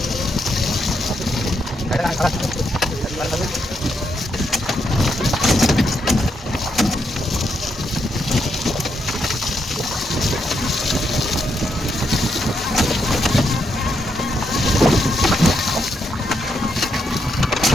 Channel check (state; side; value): normal; both; correlation 0.79